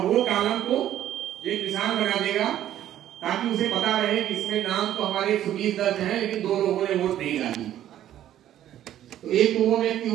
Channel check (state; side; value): quieter; left; 11.9 dB